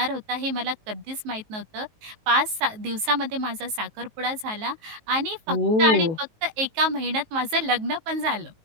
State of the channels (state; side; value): late; left; 19 ms